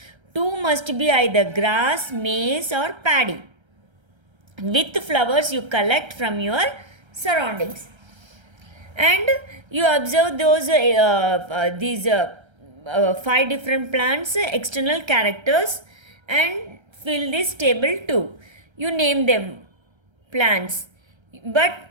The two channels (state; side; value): late; left; 1.3 ms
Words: 2 must be either grass, maize or paddy. With flowers you collect from your surroundings. And you observe those these 5 different plants, external characters, and fill this table 2. You name them plants. But